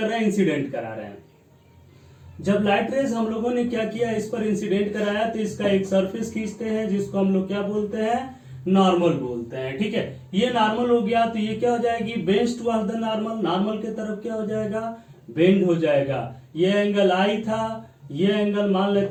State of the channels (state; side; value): identical; both; correlation 1.00